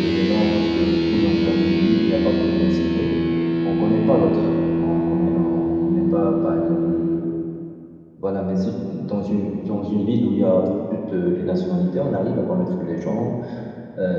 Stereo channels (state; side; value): identical; both; correlation 1.00